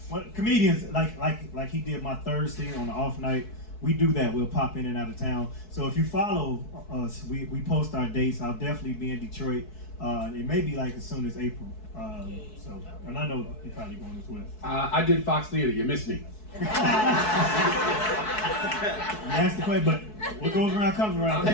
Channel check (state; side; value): late; right; 4.6 ms